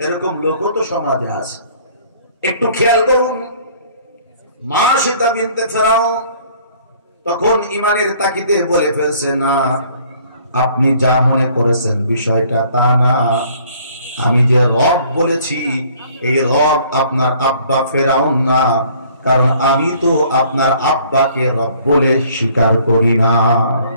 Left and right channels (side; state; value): both; inverted; correlation -0.57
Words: এরকম লোকও তো সমাজে আছে। একটু খেয়াল করুন, মাশিতা বিনতে ফেরাউন তখন ইমানের তাকিদে বলে ফেলছে, না আপনি যা মনে করেছেন বিষয়টা তা না, আমি যে রব বলেছি এই রব আপনার আব্বা ফেরাউন না, কারণ আমি তো আপনার আব্বাকে রব বলে স্বীকার করি না।